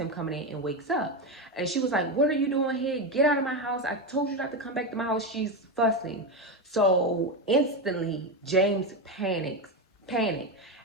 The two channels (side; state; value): both; normal; correlation 0.13